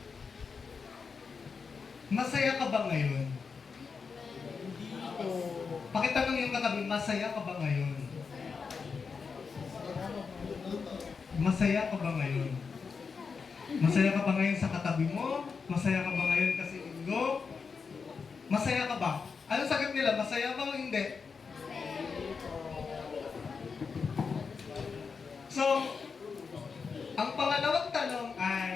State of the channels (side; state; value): right; quieter; 5.4 dB